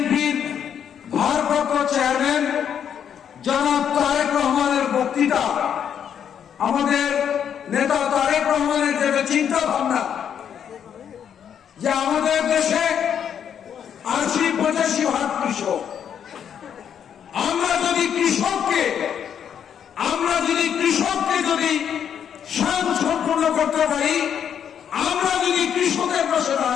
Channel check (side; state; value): right; quieter; 8.5 dB